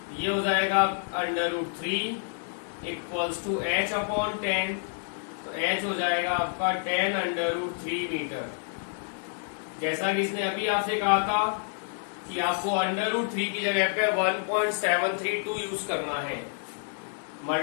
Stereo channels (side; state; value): right; silent; digital silence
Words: ये हो जाएगा √3 इक्वल्स टू h अपॉन 10, तो h हो जाएगा आपका 10 √3 मीटर। जैसा कि इसने अभी आपसे कहा था कि आपको √3 की जगह पे 1.732 यूज करना है,